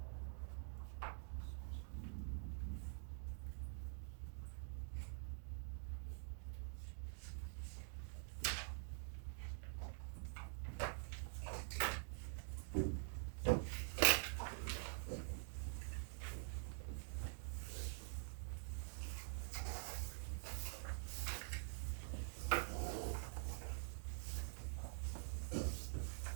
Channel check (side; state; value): left; silent; digital silence